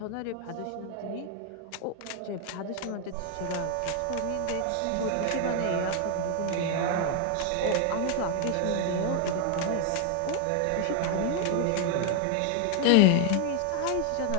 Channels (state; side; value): different; both; correlation 0.00